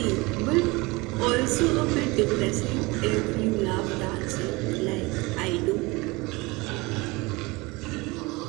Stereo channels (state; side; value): quieter; left; 24.1 dB